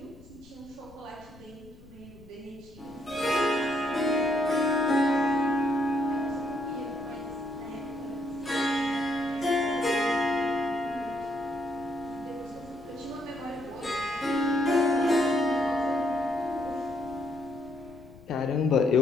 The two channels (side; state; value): left; noise; rumble, 22 dB below the sound